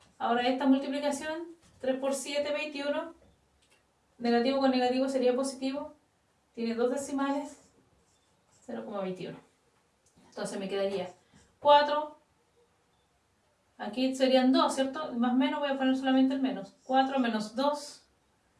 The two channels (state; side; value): identical; both; correlation 1.00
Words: ahora esta multiplicación, 3 por 7, 21, negativo con negativo sería positivo, tiene 2 decimales, 0,21. Entonces me quedaría 4, aquí serían 2, ¿cierto? Más menos, voy a poner solamente el menos. 4 menos 2,